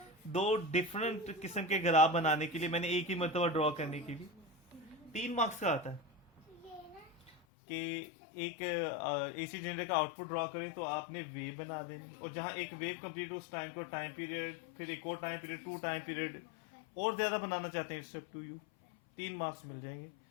दो डिफरेंट किस्म के ग्राफ बनाने के लिए, मैंने एक ही मरतबा ड्रॉ करने के लिए 3 मार्क्स का आता है कि एक AC जनरेटर का आउटपुट ड्रॉ करें तो आपने वेव बना देनी, और जहां एक वेव कंप्लीट हो उस टाइम को टाइम पीरियड, फिर एक और टाइम पीरियड, 2 टाइम पीरियड, और ज्यादा बनाना चाहते हैं स्टेप 2 यू, 3 मार्क्स मिल जाएंगे।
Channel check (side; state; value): right; drops out; at 7.4 s